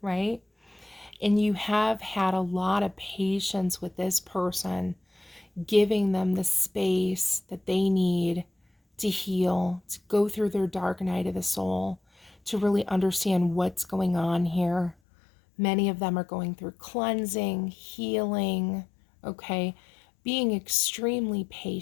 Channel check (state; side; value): drops out; right; at 15.0 s